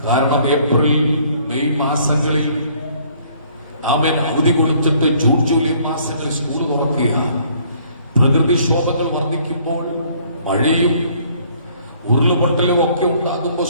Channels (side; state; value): both; inverted; correlation -0.60